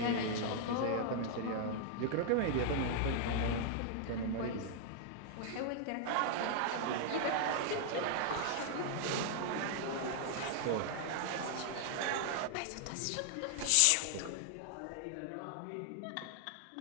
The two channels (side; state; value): both; different; correlation 0.00